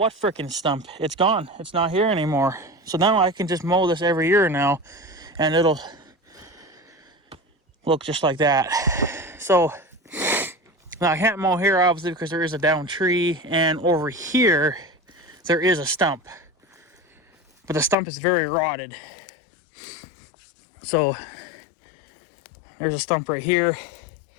frickin' stump? It's gone. It's not here anymore. So now I can just mow this every year now, and it'll look just like that. So now I can't mow here, obviously, because there is a down tree, and over here there is a stump, but the stump is very rotted. So there's a stump right here.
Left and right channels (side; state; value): right; drops out; at 17.9 s